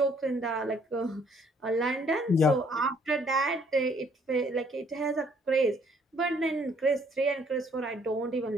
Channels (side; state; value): both; normal; correlation 0.64